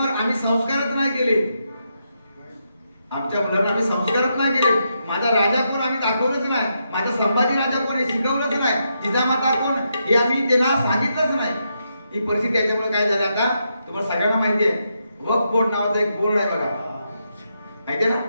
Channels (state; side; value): inverted; both; correlation -0.82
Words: आम्ही संस्कारच नाही केले. आमच्या मुलांना आम्ही संस्कारच नाही केले. माझा राजा कोण आम्ही दाखवलंच नाही. माझा संभाजी राजा कोण हे शिकवलंच नाही. जिजामाता कोण हे आम्ही त्यांना सांगितलंच नाही. ही परिस्थिती याच्यामुळे काय झालं आता तुम्हाला सगळ्यांना माहिती आहे. वक्फ बोर्ड नावाचा एक बोर्ड आहे बघा, माहितीये ना.